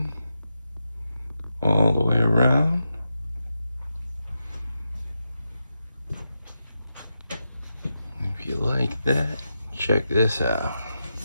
all the way around. If you like that, check this out.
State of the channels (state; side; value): inverted; both; correlation -0.87